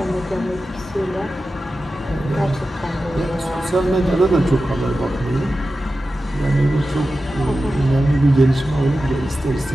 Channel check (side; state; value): both; normal; correlation 0.93